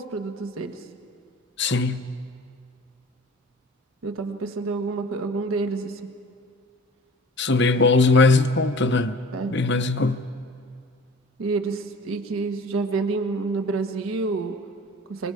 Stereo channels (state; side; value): normal; both; correlation 0.44